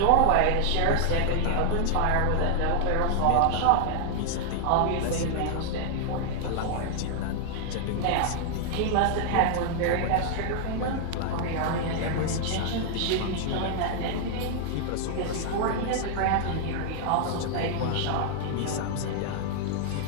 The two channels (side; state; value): both; different; correlation -0.01